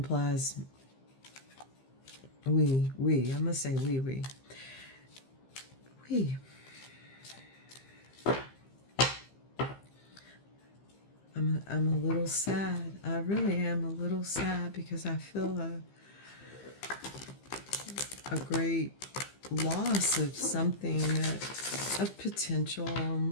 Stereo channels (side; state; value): right; late; 15 ms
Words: we. I'm gonna say we. We. I'm a little sad. I really am a little sad because I feel a great loss of something of potential